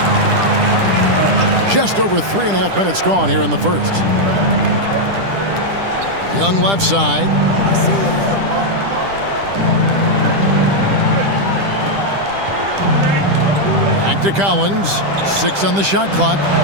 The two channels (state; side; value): late; left; 10 ms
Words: Just over 3.5 minutes gone here in the first. Young left side. Back to Collins. 6 on the shot clock.